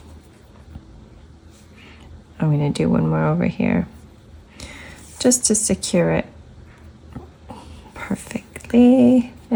I'm going to do one more over here just to secure it perfectly.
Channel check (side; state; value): both; identical; correlation 1.00